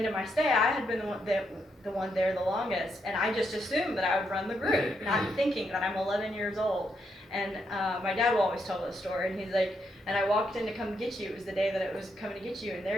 of my stay, I had been the one there the longest, and I just assumed that I would run the group, not thinking that I'm 11 years old. And my dad will always tell this story, and he's like, and I walked in to come get you. It was the day that it was coming to get you, and there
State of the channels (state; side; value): normal; both; correlation 0.79